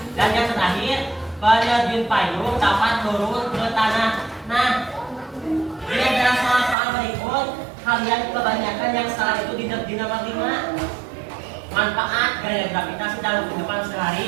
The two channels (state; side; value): drops out; left; at 6.8 s